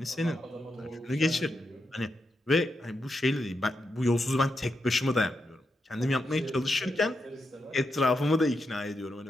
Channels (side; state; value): both; normal; correlation 0.85